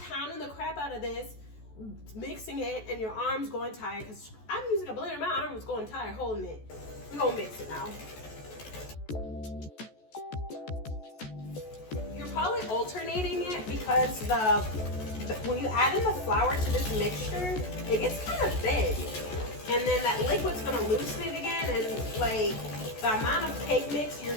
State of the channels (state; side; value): late; right; 14 ms